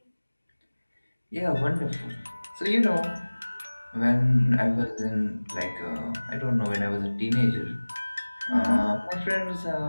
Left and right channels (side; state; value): both; inverted; correlation -1.00